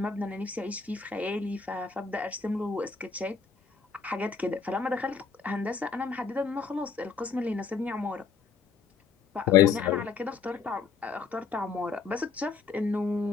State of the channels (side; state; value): right; quieter; 5.6 dB